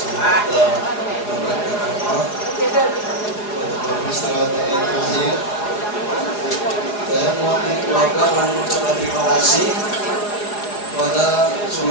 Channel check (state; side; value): late; right; 4.8 ms